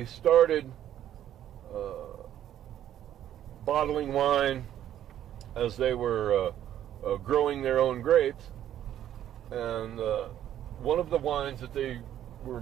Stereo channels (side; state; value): left; quieter; 11.2 dB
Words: started bottling wine as they were growing their own grapes, and one of the wines that they were